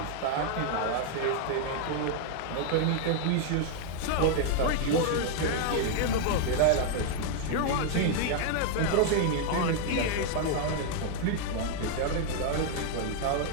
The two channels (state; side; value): different; both; correlation 0.00